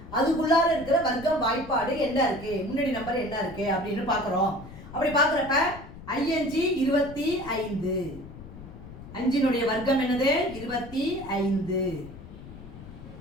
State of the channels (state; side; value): noise; left; rumble, 15 dB below the sound